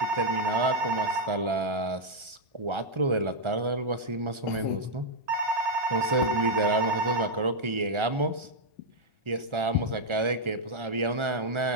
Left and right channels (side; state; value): left; late; 1.4 ms